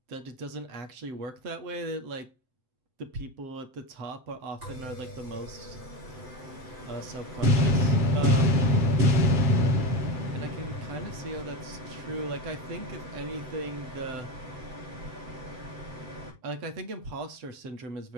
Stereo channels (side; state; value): left; late; 7.8 ms